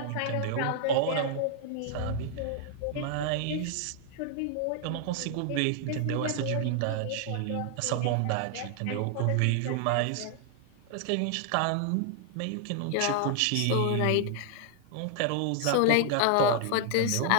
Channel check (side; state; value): both; different; correlation -0.01